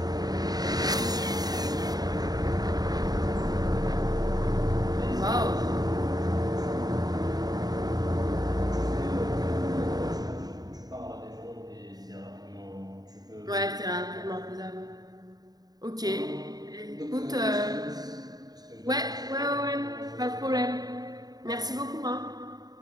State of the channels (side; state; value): left; late; 0.19 ms